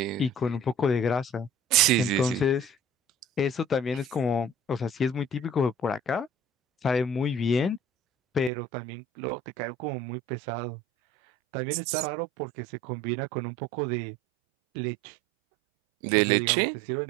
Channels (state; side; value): drops out; left; at 8.5 s